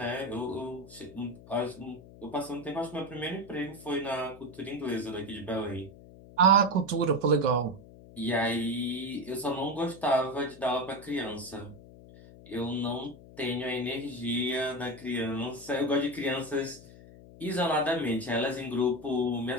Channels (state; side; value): noise; left; hum, 19 dB below the sound